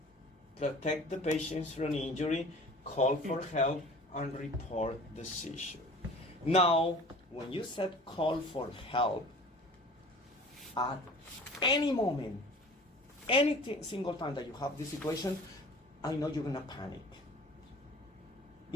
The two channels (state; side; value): normal; both; correlation 0.44